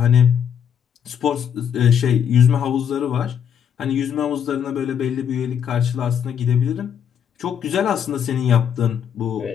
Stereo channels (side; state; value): right; quieter; 8.3 dB